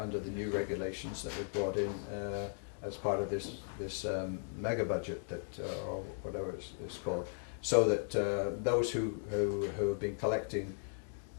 the new regulations that were brought in as part of this mega budget that or whatever it's called, so that those who have been collecting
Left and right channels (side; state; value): right; silent; digital silence